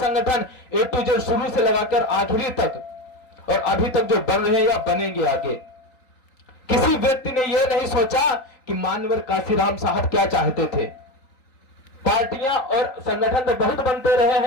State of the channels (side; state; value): right; late; 3.9 ms